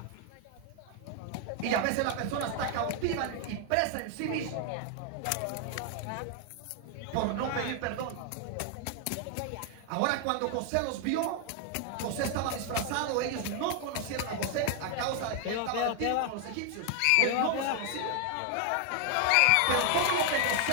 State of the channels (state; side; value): different; both; correlation 0.00